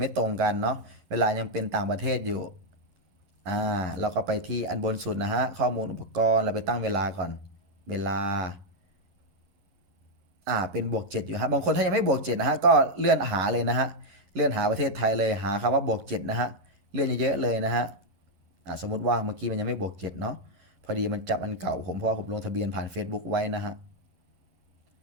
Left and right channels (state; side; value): late; left; 11 ms